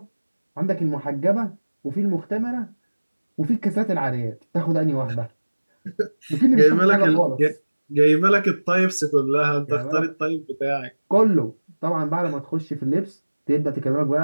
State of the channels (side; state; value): both; inverted; correlation -1.00